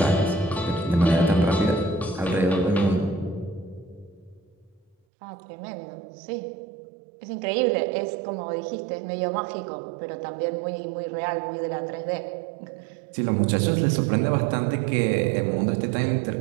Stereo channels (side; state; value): left; drops out; at 5.0 s